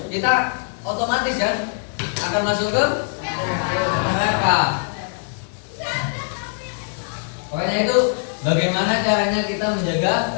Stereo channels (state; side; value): silent; right; 63 dB below the other